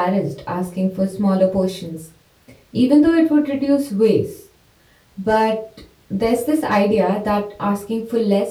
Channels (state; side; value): identical; both; correlation 1.00